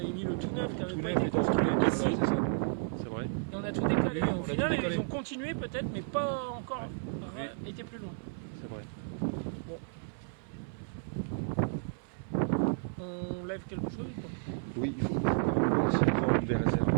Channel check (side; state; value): left; silent; 56 dB below the other